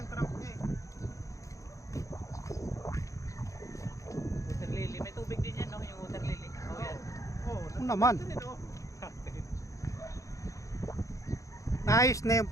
trunk niya eh. Water lily. May tubig din yan, no? Yung water lily. Oo, yan. Oo. Ano naman? Din, oh. Naayos na yung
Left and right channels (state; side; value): late; right; 0.15 ms